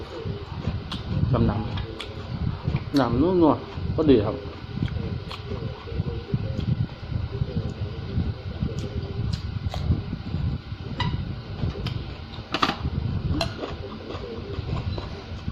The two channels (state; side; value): identical; both; correlation 1.00